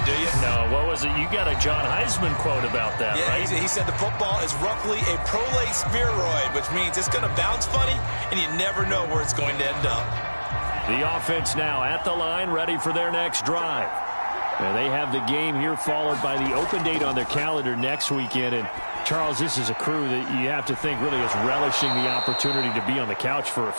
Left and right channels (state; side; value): inverted; both; correlation -1.00